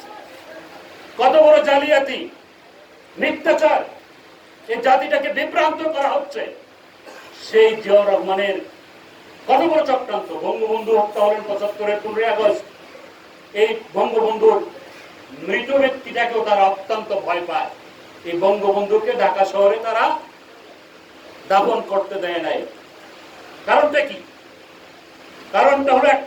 কত বড় জালিয়াতি, মিথ্যাচার! এই জাতিটাকে বিভ্রান্ত করা হচ্ছে। সেই জিয়াউর রহমানের কত বড় চক্রান্ত! বঙ্গবন্ধু হত্যা হলেন ৭৫-এর ১৫ই আগস্ট। এই বঙ্গবন্ধুর মৃত ব্যক্তিটাকেও তারা অত্যন্ত ভয় পায়। এই বঙ্গবন্ধুকে ঢাকা শহরে তারা দাফন করতে দেয় নাই। কারণটা কি? কারণটা হলো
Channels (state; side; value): identical; both; correlation 1.00